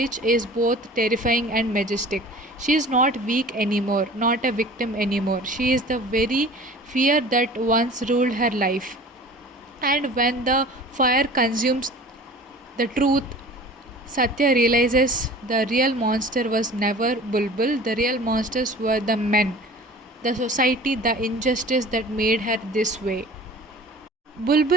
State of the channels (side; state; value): both; normal; correlation 0.43